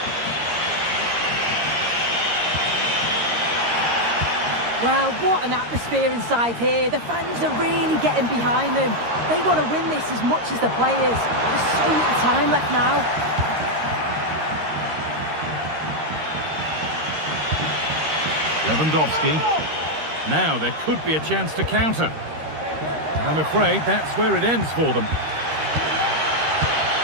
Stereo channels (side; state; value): left; late; 13 ms